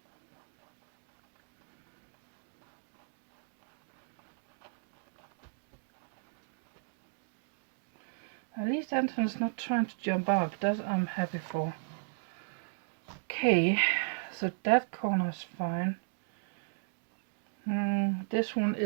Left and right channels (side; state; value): left; silent; digital silence